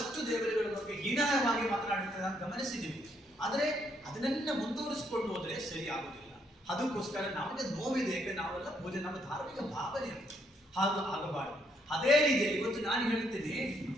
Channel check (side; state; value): both; normal; correlation 0.73